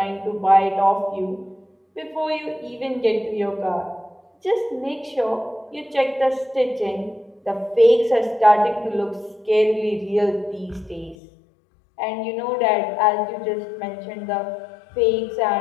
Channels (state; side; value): drops out; right; at 11.2 s